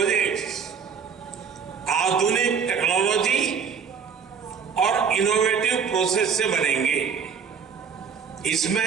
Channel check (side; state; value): left; quieter; 6.5 dB